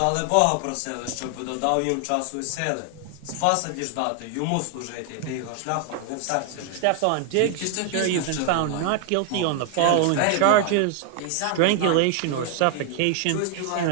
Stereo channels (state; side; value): different; both; correlation 0.00